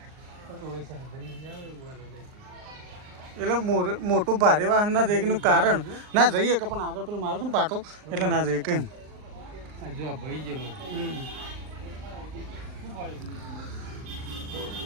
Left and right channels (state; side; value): late; left; 39 ms